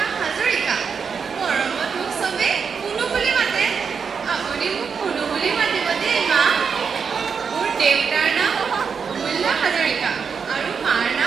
হাজৰিকা মৰমত মোক চবে কুনু বুলি মাতে আপুনি মোক কুনু বুলি মাতিব দেই মা মোৰ দেউতাৰ নাম অমূল্য হাজৰিকা আৰু মাৰ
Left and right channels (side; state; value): left; quieter; 6.1 dB